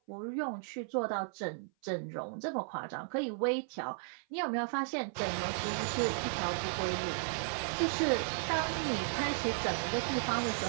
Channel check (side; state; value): left; silent; 54 dB below the other